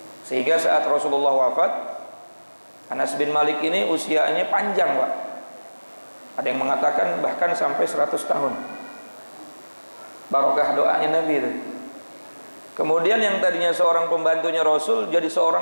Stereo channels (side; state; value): both; inverted; correlation -1.00